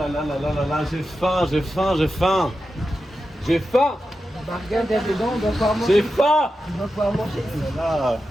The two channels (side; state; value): both; normal; correlation 0.90